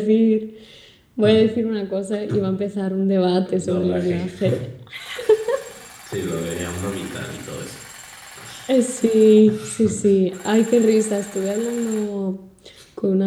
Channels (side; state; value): both; identical; correlation 1.00